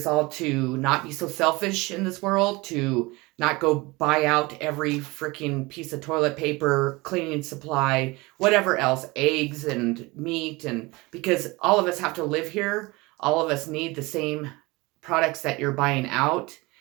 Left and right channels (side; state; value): left; quieter; 23.4 dB